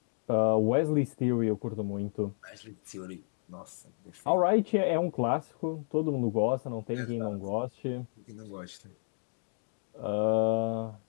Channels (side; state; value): right; silent; digital silence